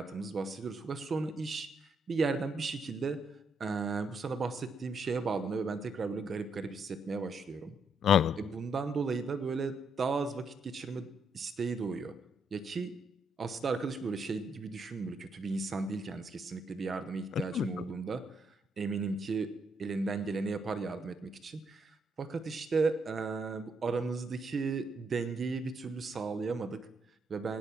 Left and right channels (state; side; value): normal; both; correlation 0.75